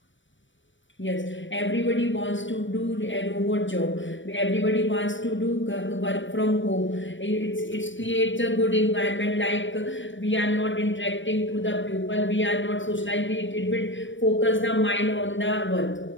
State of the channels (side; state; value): right; late; 0.55 ms